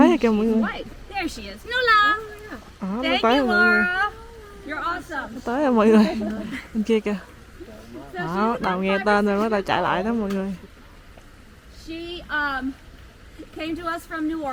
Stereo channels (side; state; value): both; identical; correlation 1.00